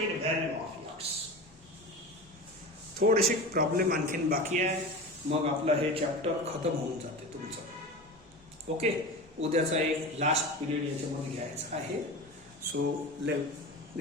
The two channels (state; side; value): noise; right; rumble, 29 dB below the sound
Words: value of x. थोडेसे प्रॉब्लेम आणखीन बाकी आहे, मग आपलं हे चॅप्टर खतम होऊन जाते तुमचं. ओके उद्याचा एक लास्ट पिरियड याच्यामध्ये घ्यायचा आहे. So